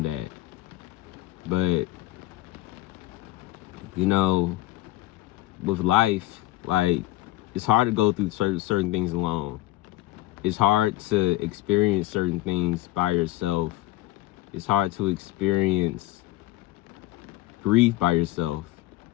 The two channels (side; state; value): right; quieter; 17.0 dB